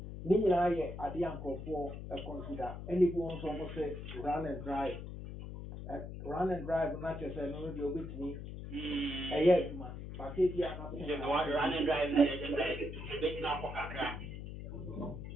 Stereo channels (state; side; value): noise; left; hum, 9 dB below the sound